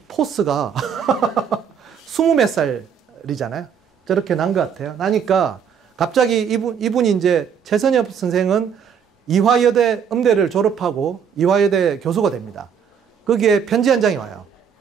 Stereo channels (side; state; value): left; quieter; 7.4 dB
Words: 포스가 20몇 살이잖아요. 저렇게 난 것 같아요. 나니까 갑자기 이분이 이제 최선엽 선생은 이화여대 음대를 졸업하고 이화여대 교수가 됩니다. 거기에 편지 한 장이 와요.